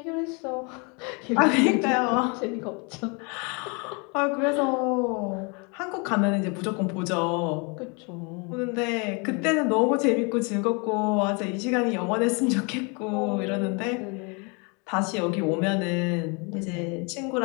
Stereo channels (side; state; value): right; quieter; 32.3 dB